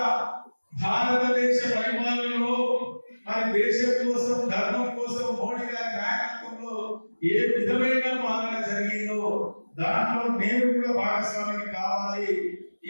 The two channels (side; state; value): both; inverted; correlation -1.00